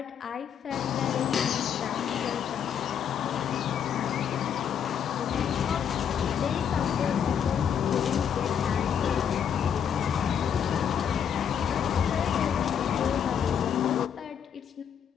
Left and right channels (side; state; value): right; quieter; 8.2 dB